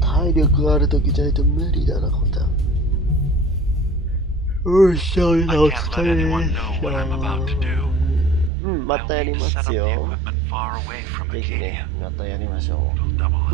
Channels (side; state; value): left; drops out; at 8.5 s